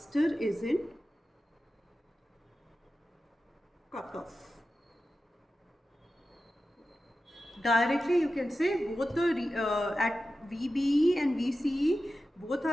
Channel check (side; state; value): both; normal; correlation 0.93